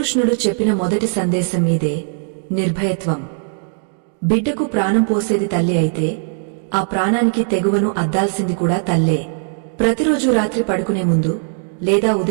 చెప్పిన మొదటి సందేశం మీదే, నిర్భయత్వం. బిడ్డకు ప్రాణం పోసేది తల్లి అయితే ఆ ప్రాణానికి తెగువను అద్దాల్సింది కూడా తల్లే. ప్రతిరోజు రాత్రి పడుకునే ముందు లేదా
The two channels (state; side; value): silent; left; 63 dB below the other